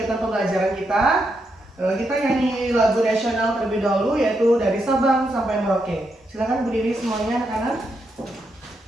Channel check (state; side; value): normal; both; correlation 0.82